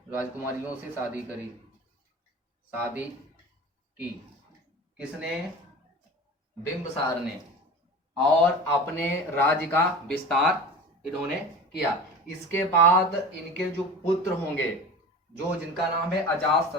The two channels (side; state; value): both; normal; correlation 0.35